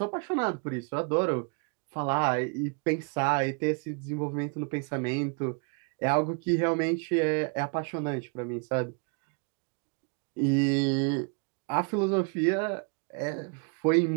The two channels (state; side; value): quieter; left; 35.7 dB